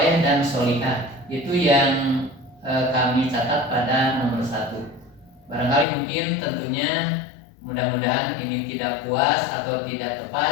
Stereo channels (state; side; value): drops out; right; at 5.9 s